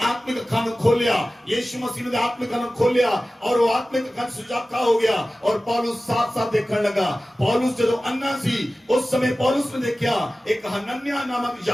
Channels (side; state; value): both; normal; correlation 0.96